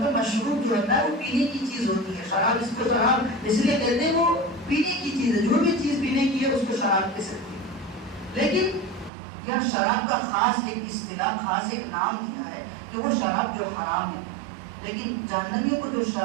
مشروب جو ہوتا ہے وہ پینے کی چیز ہوتی ہے. شراب اس کو شراب اس لیے کہتے ہیں وہ پینے کی چیز ہے. جو بھی چیز پینے کی ہے اس کو شراب کہہ سکتے ہیں. لیکن یہ شراب کا خاص ایک اصطلاح، خاص ایک نام دیا ہے کہ وہ شراب جو حرام ہے. لیکن جہنمیوں کو جو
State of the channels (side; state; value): left; drops out; at 9.1 s